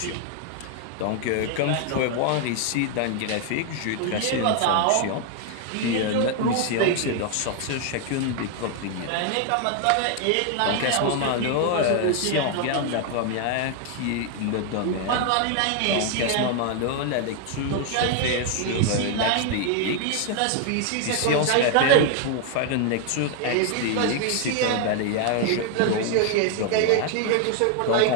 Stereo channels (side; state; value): both; different; correlation 0.00